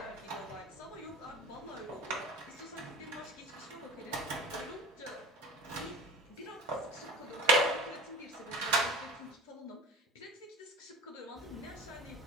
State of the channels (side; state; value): both; normal; correlation 0.35